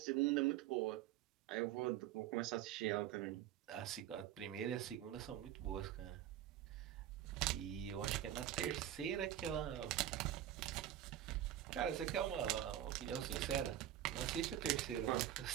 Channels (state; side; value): quieter; left; 11.8 dB